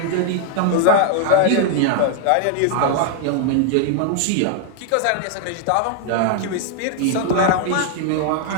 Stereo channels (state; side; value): different; both; correlation 0.00